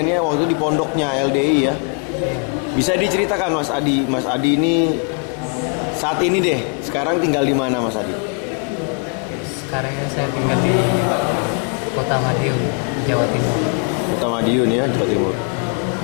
waktu di pondoknya LDI ya. Bisa diceritakan Mas Adi? Mas Adi ini saat ini deh, sekarang tinggal di mana Mas Adi? Sekarang ini saya tinggal di Kota Madiun, Jawa Timur. Kota Madiun ya, Jawa Timur.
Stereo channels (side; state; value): right; quieter; 37.7 dB